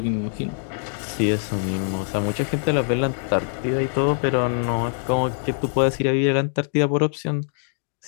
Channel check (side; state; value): right; silent; digital silence